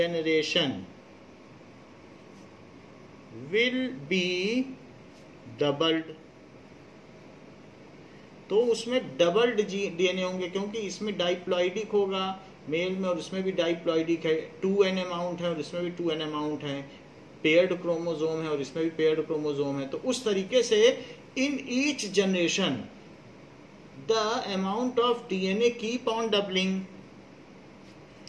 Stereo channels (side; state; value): both; identical; correlation 1.00